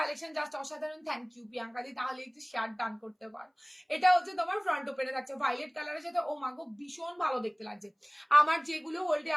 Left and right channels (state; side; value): identical; both; correlation 1.00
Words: জাস্ট অসাধারণ। থ্যাংক ইউ প্রিয়াঙ্কা দি, তাহলে একটু শেয়ার ডান করতে পারো। এটা হচ্ছে তোমার ফ্রন্ট ওপেনে থাকছে ভাইলেট কালারের সাথে, ও মাগো ভীষণ ভালো দেখতে লাগছে। আমার যেগুলো হোল্ডে